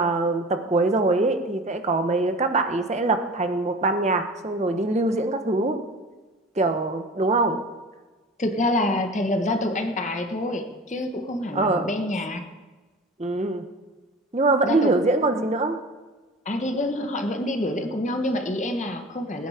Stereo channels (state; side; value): normal; both; correlation 0.38